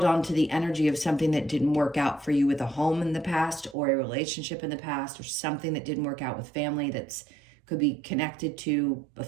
on to the energy of something that didn't work out for you with a home in the past, or a relationship in the past, or something that didn't work out with family that's could be connected to a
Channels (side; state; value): left; drops out; at 3.8 s